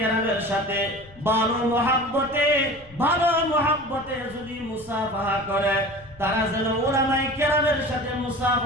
সাথে ভালো মুহাব্বতে যদি মুসাফাহা করে, তারা যেন উলামায়ে কেরামের সাথে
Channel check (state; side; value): noise; left; rumble, 23 dB below the sound